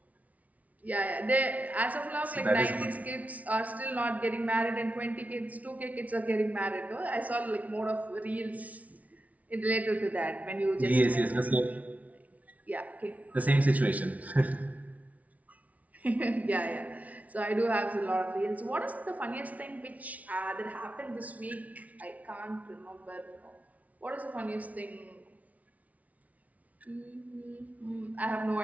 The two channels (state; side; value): late; left; 0.070 ms